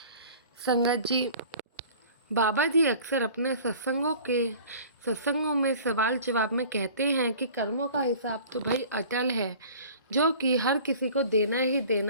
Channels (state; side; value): inverted; both; correlation -0.45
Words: संगत जी, बाबा जी अक्सर अपने सत्संगों में सवाल जवाब में कहते हैं कि कर्मों का हिसाब तो भाई अटल है, जो कि हर किसी को देना ही